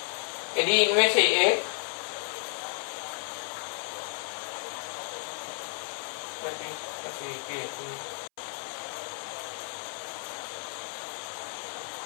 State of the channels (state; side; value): silent; right; 56 dB below the other